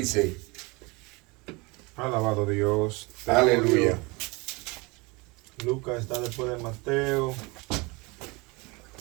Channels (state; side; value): quieter; left; 26.2 dB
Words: Alabado Dios. Aleluya. Lucas está después de Mateo.